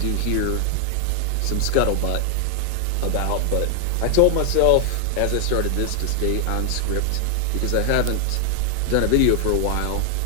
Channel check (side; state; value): both; different; correlation 0.00